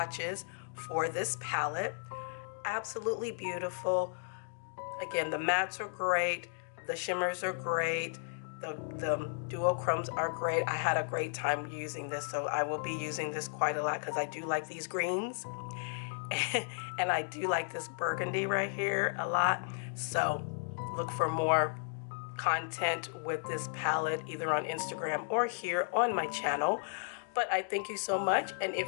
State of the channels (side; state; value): right; silent; digital silence